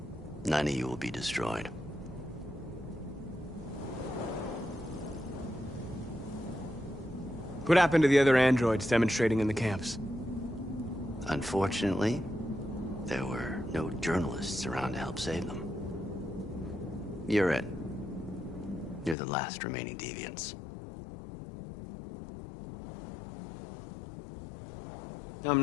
none of you will be destroyed. What happened to the other androids demonstrating in the camps? Unfortunately, there were no journalists around to help save them. You're it. You're the last remaining deviants. I'm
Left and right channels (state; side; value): drops out; right; at 19.2 s